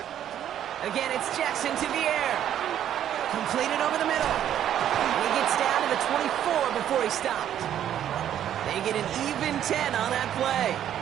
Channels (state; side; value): quieter; left; 10.6 dB